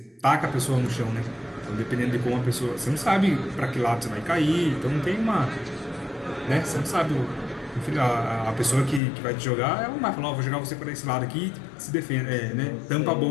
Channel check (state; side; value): drops out; right; at 9.0 s